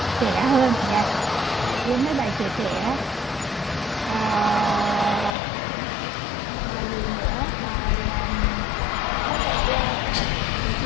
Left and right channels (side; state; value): right; drops out; at 5.4 s